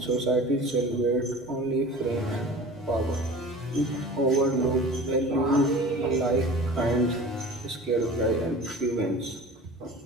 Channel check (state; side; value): normal; both; correlation 0.40